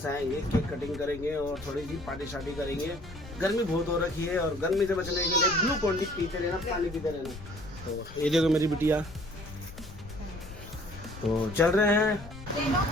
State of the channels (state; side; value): noise; left; rumble, 15 dB below the sound